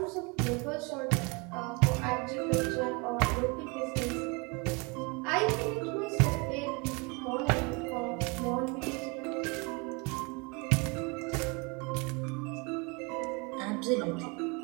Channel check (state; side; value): quieter; left; 29.6 dB